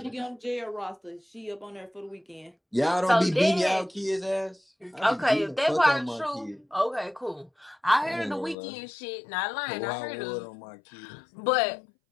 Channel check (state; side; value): drops out; right; at 8.6 s